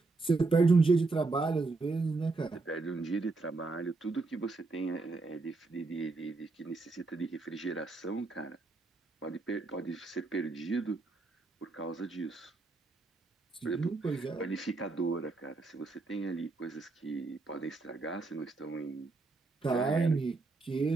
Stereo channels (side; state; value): left; quieter; 3.7 dB